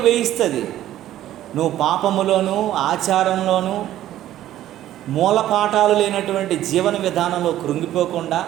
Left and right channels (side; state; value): left; quieter; 13.1 dB